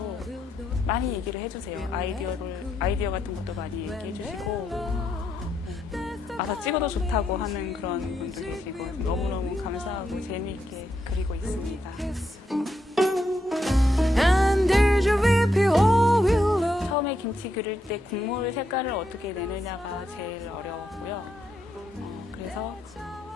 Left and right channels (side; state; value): both; normal; correlation 0.80